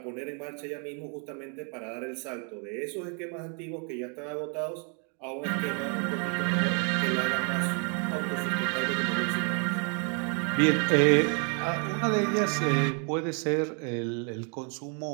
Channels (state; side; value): quieter; left; 38.0 dB